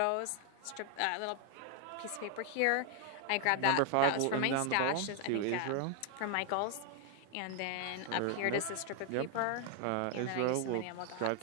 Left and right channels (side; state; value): both; different; correlation 0.00